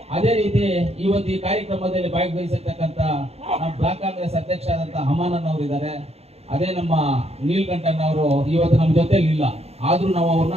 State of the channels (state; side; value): late; left; 0.30 ms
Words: ಅದೇ ರೀತಿ ಇವತ್ತು ಈ ಕಾರ್ಯಕ್ರಮದಲ್ಲಿ ಭಾಗವಹಿಸಿರ್ತಕ್ಕಂಥ ನಮ್ಮ ಬ್ಲಾಕ್ ಕಾಂಗ್ರೆಸ್ ಅಧ್ಯಕ್ಷ ಆದಂಥ ಹಮಾನನ್ ಅವರು ಇದ್ದಾರೆ. ಅದೇ ನಮ್ಮ ನೀಲ್ಕಂಠನ್ ಅವರು ಇವತ್ತು ನಮ್ಮ ಜೊತೆಲಿ ಇಲ್ಲ, ಆದ್ರೂ ನಾವು ಅವ್ರನ್ನ